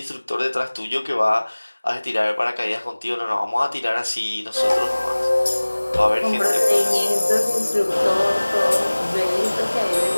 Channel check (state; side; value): inverted; both; correlation -1.00